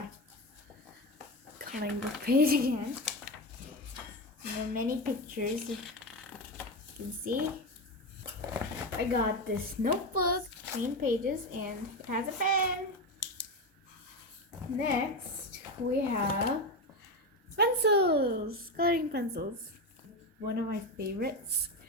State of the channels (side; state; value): both; normal; correlation 0.16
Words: coloring book page again. And there are many pictures, you can see. I got this notebook, plain pages, and it has a pen. Next, we have pencils, coloring pencils. One of my favorites.